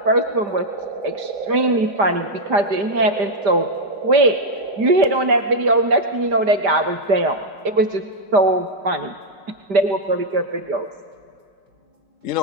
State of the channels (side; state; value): left; late; 5.0 ms